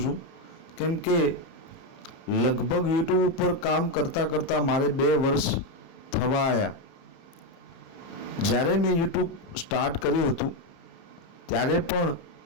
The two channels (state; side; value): late; right; 30 ms